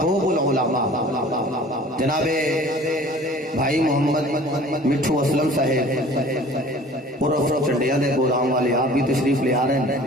العلماء جناب بھائی محمد مٹھو اسلم صاحب عرف چنڈیا دے گودام والے آپ بھی تشریف لے آ رہے ہیں.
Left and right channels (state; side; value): normal; both; correlation 0.47